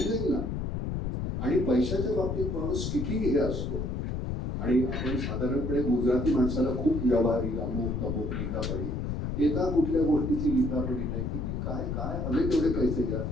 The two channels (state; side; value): noise; left; rumble, 2 dB below the sound